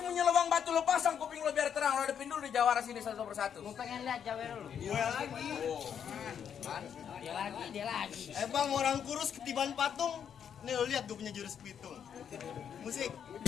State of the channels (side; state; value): right; quieter; 8.2 dB